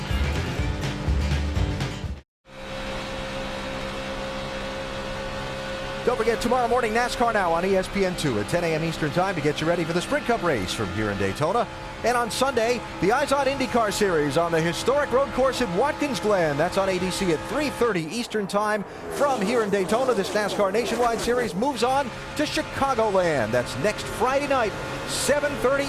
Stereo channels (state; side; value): identical; both; correlation 1.00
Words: Don't forget, tomorrow morning, NASCAR Now on ESPN2 at 10 a.m. Eastern Time to get you ready for the Sprint Cup race from here in Daytona. And on Sunday, the Eyes on IndyCar Series on the historic road course at Watkins Glen. That's on ADC at 3:30 Eastern Time. From here in Daytona, this NASCAR Nationwide Series moves on to Chicagoland. That's next Friday night,